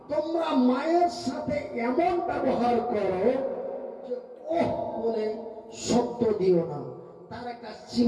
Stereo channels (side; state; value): both; identical; correlation 1.00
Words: তোমরা মায়ের সাথে এমন ব্যবহার করো যে ওহ বলে শব্দ দিও না। তার একটা